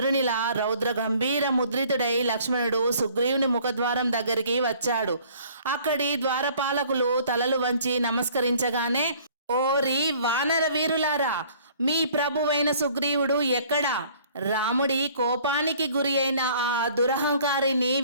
రౌద్ర గంభీర ముద్రితుడై లక్ష్మణుడు సుగ్రీవుని ముఖద్వారం దగ్గరికి వచ్చాడు. అక్కడి ద్వారపాలకులు తలలు వంచి నమస్కరించగానే, ఓరి వానర వీరులారా, మీ ప్రభువైన సుగ్రీవుడు ఎక్కడా? రాముడి కోపానికి గురి అయిన ఆ దురహంకారిని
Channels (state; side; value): inverted; both; correlation -0.55